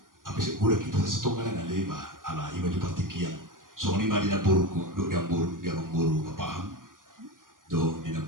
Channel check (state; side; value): late; left; 0.90 ms